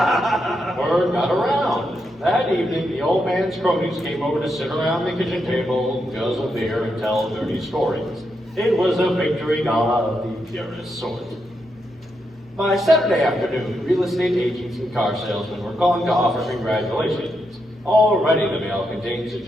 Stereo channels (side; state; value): both; normal; correlation 0.83